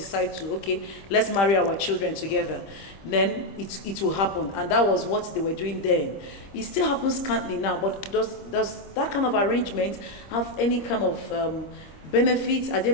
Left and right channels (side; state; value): right; late; 25 ms